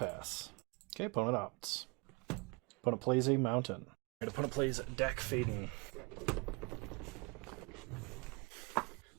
Okay, opponent opts. Opponent plays a mountain. And opponent plays Dak Faden.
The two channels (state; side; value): quieter; left; 29.2 dB